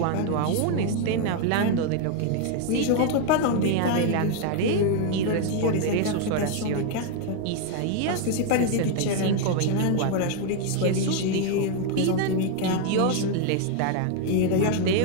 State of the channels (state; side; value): different; both; correlation 0.01